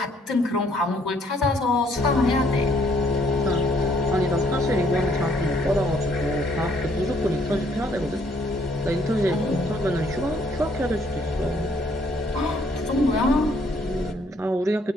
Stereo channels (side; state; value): both; normal; correlation 0.66